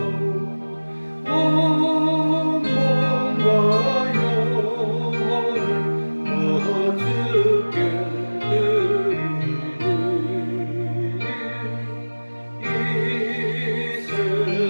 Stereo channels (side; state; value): both; inverted; correlation -1.00